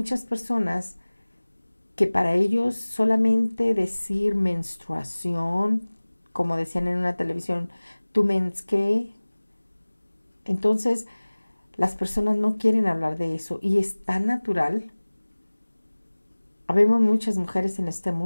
personas que para ellos solamente decir menstruación, como decían en una televisión, tu mens qué. Entonces, las personas no quieren hablar de eso y es tan natural. Habemos muchas mujeres en este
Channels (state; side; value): inverted; both; correlation -1.00